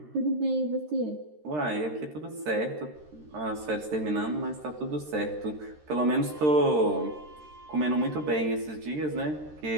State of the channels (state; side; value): late; left; 13 ms